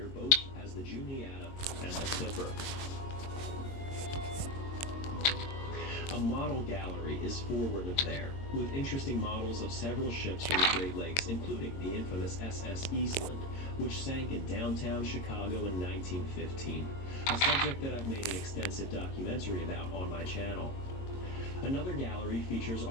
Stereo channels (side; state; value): right; late; 22 ms